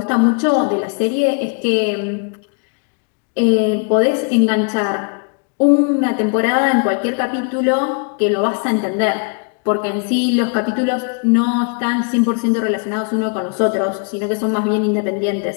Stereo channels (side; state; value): right; quieter; 39.8 dB